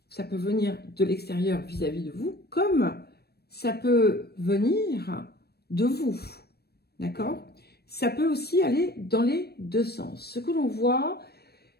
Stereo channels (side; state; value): right; late; 0.47 ms